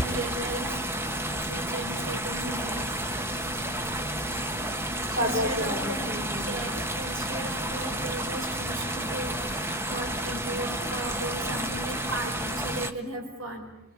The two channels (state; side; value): normal; both; correlation 0.23